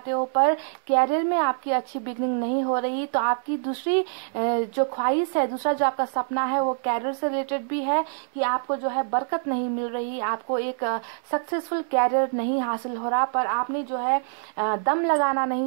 हो, पर कैरियर में आपकी अच्छी बिगनिंग नहीं हो रही। तो आपकी दूसरी जो ख्वाहिश है, दूसरा जो आपका सपना है, वो कैरियर से रिलेटेड भी है कि आपको जो है बरकत नहीं मिल रही, आपको एक सक्सेसफुल कैरियर नहीं हासिल हो रहा, पर आपने जो है दम लगाना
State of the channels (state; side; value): silent; left; digital silence